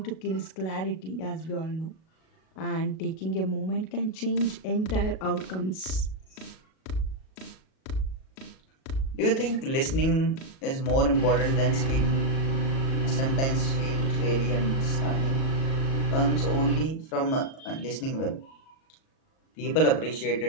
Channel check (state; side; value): late; right; 37 ms